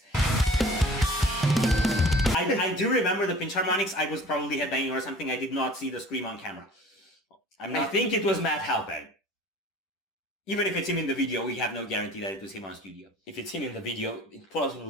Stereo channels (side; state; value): both; normal; correlation 0.45